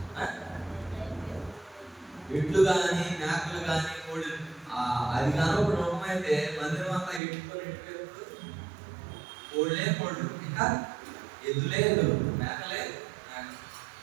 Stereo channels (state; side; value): drops out; left; at 7.2 s